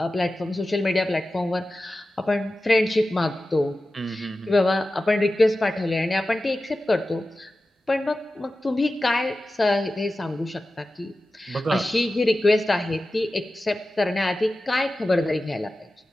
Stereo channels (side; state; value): both; normal; correlation 0.94